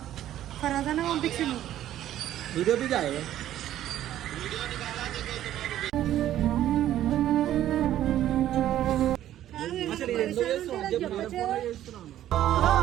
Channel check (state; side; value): quieter; left; 12.4 dB